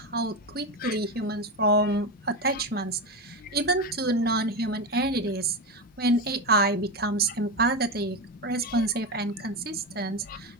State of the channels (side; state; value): both; normal; correlation 0.15